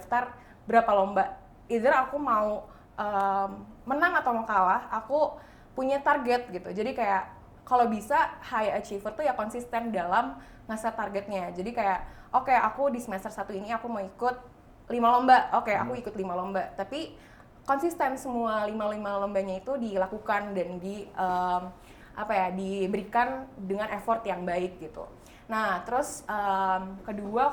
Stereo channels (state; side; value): identical; both; correlation 1.00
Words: berapa lomba, either aku mau menang atau mau kalah, aku punya target gitu. Jadi kayak kalau bisa high achiever tuh ya konsisten dalam ngeset targetnya. Jadi kayak oke, aku di semester 1 ini aku mau ikut 5 lomba, oke aku ikut 5 lomba, tapi konsisten semua 5 lombanya itu dilakukan dan diberikan dengan effort yang baik gitu. Nah terus kedua,